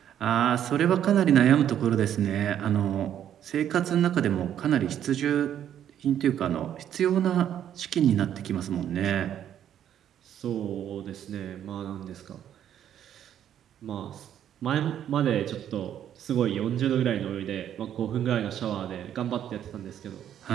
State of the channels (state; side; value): quieter; left; 10.2 dB